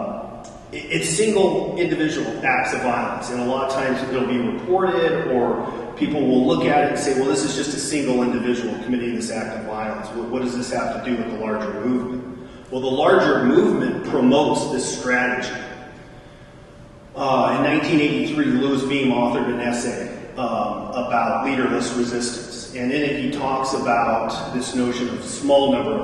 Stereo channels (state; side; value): identical; both; correlation 1.00